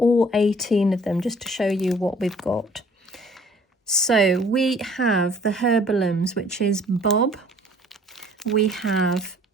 18 of them just to show you what we've got. So we have the Herbalums, which is Bob, we have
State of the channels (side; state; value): both; normal; correlation 0.55